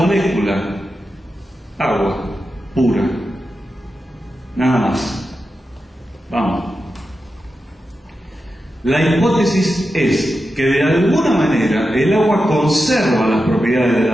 Agua pura. Nada más. Vamos. La hipótesis es que de alguna manera el agua conserva las propiedades de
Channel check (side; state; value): both; normal; correlation 0.90